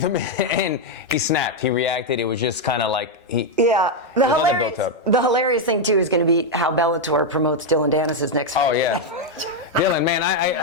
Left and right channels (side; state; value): both; normal; correlation 0.01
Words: him in and he snapped. He reacted. It was just kind of like The hilarious thing too is going to be how Bellator promotes Dillon Danis' next fight. Oh yeah. Dillon, man,